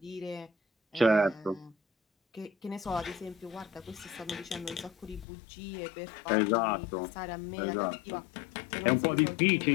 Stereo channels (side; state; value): right; drops out; at 5.2 s